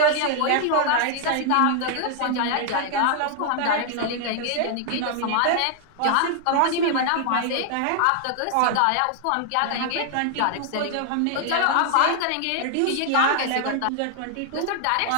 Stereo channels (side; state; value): both; different; correlation 0.00